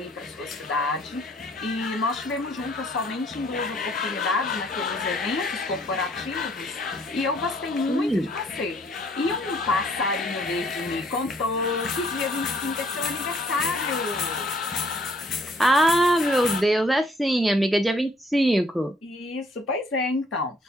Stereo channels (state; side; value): normal; both; correlation 0.62